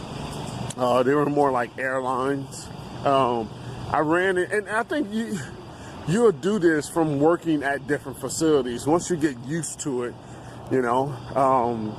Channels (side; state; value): both; identical; correlation 1.00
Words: were more like airlines. I ran it, and I think you'll do this from working at different facilities once you get used to it, you know,